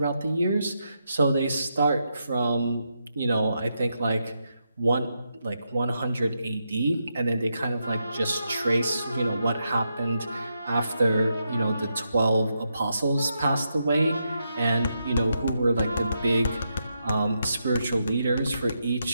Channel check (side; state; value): both; inverted; correlation -0.83